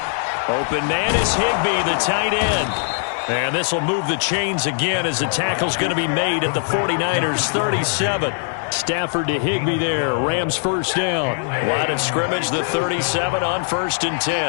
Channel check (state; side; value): silent; right; digital silence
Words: Open man is Higbee, the tight end. And this will move the chains again as the tackle's going to be made at the 49ers 37. Stafford to Higbee there. Rams first down. Line of scrimmage, the 37 on 1st and